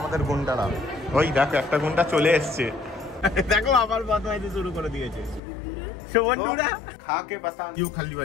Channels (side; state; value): right; drops out; at 5.4 s